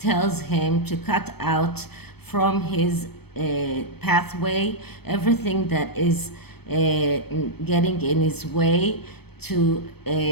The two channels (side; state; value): right; late; 0.97 ms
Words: him to cut out from his pathway everything that is getting in his way to